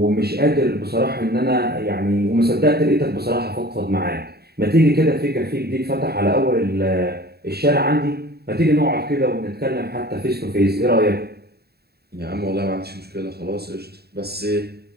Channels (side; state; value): left; late; 0.46 ms